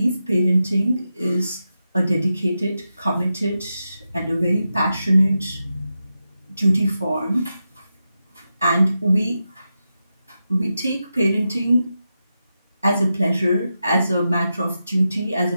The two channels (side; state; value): both; inverted; correlation -0.89